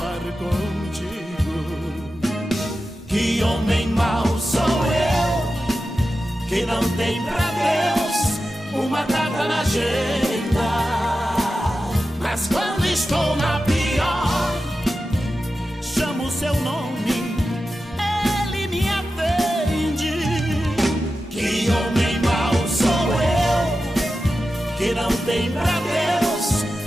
contigo. Que homem mau sou eu, que não tem pra Deus uma data na agenda. Mas quando estou na pior, chamo o seu nome, que homem mau sou eu, que não tem pra Deus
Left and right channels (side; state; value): both; normal; correlation 0.92